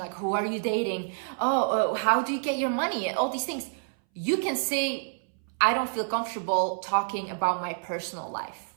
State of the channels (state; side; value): silent; left; 59 dB below the other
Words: who are you dating? How do you get your money? All these things. You can say, I don't feel comfortable talking about my personal life